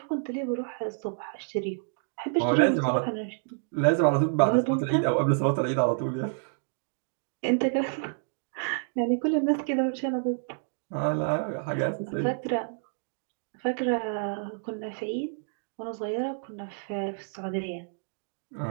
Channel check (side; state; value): left; silent; digital silence